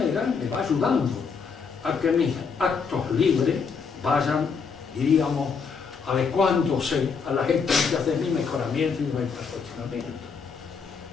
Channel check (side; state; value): right; quieter; 5.6 dB